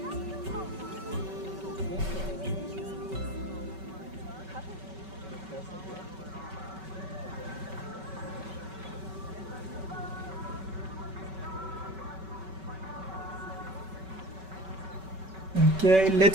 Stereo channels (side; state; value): left; late; 5.3 ms